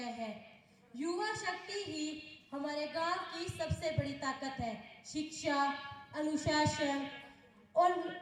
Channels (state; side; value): identical; both; correlation 1.00